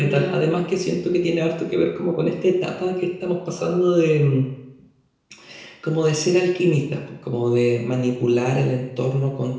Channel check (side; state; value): both; identical; correlation 1.00